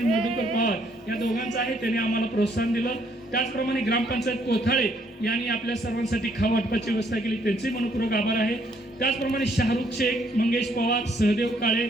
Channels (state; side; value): normal; both; correlation 0.69